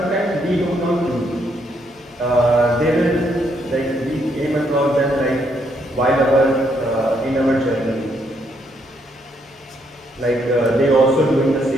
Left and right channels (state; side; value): normal; both; correlation 0.73